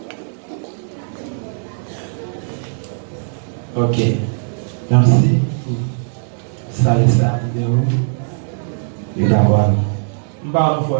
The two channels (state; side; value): silent; left; digital silence